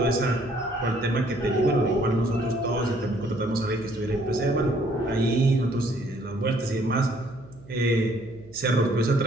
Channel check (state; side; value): noise; right; hum, 22 dB below the sound